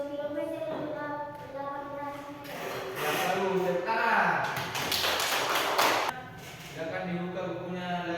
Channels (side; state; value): right; noise; rumble, 28 dB below the sound